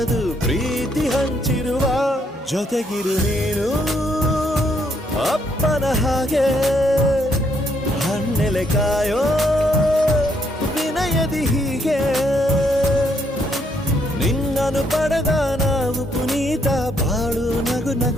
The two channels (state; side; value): normal; both; correlation 0.73